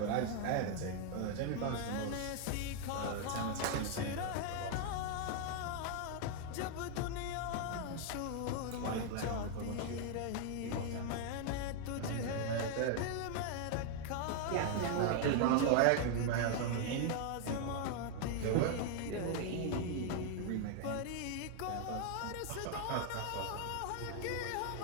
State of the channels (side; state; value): both; different; correlation 0.00